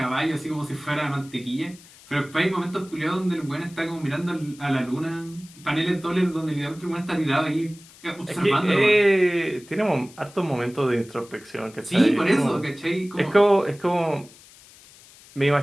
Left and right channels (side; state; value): left; noise; hiss, 23 dB below the sound